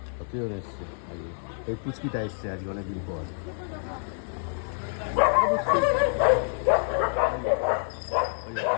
কতজন এসছে আজকে। এই পুচকিটা এসছে আজকে অনেকদিন পর।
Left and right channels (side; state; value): right; silent; 60 dB below the other